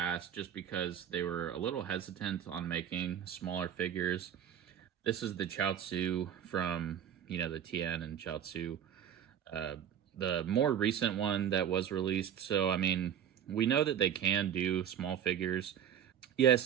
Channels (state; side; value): quieter; left; 9.4 dB